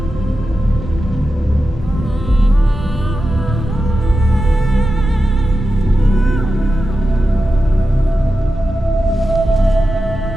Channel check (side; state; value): both; normal; correlation 0.91